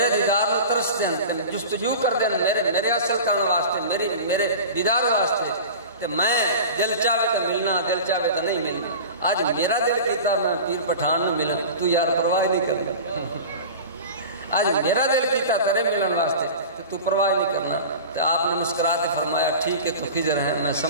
دیدار میں ترس دیں جستجو کر دیں میرے اصل کان واسطے میرے دیدار واسطے تو میں دل چاہے تو ملنا دل چاہے تو نہیں ملنا آج میرا دل کیتا میں پیر پٹھان میں ملن تو یار پرواہ نہیں کرنا آج میرا دل کیتا تیرے ملن واسطے تو پرواہ نہیں کرنا تو آپ نے مسکرات فرمایا ٹھیک ہے تو خضر ہے میں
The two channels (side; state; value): both; inverted; correlation -0.35